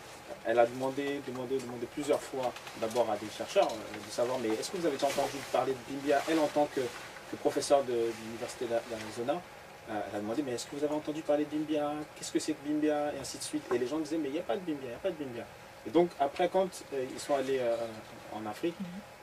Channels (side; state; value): both; identical; correlation 1.00